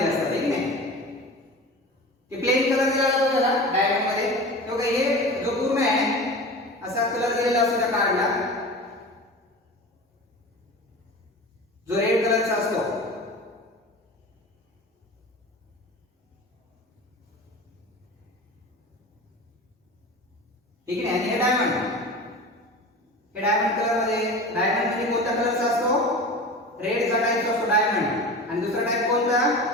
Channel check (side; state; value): both; normal; correlation 0.33